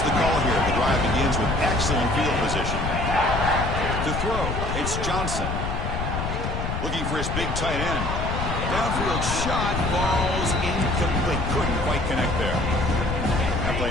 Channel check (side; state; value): left; noise; rumble, 3 dB below the sound